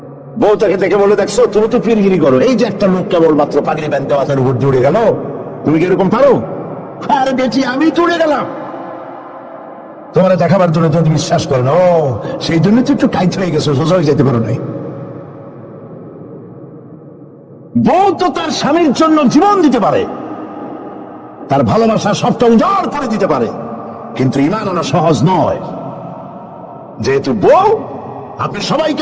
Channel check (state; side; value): identical; both; correlation 1.00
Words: বউ তাকে দেখে বলে, দেখছো তুমি তো পীরগিরি করো, এই যে একটা লোক কেবল মাত্র পাগড়ি বাঁধতে মাথার উপর জুড়ে গেল, তুমি কি এরকম পারো? আরে বেটি, আমি তো উড়ে গেলাম। তোমার দেখাবার জন্য তুমি বিশ্বাস করো না, ও সেই জন্য তো একটু কাইত হয়ে গেছো, সোজা হয়ে যেতে পারো নাই। বউ তো তার স্বামীর জন্য জীবন দিতে পারে, তার ভালোবাসা সবটা উজাড় করে দিতে পারে, কিন্তু ঈমান আনা সহজ নয়। যেহেতু বউ, আপনি সবাইকে